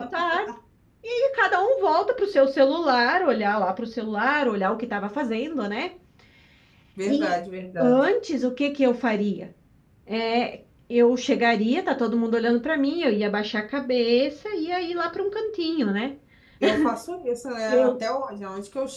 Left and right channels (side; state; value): both; identical; correlation 1.00